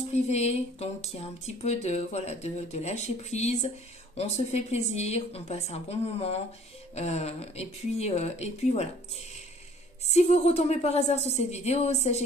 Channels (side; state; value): both; normal; correlation 0.54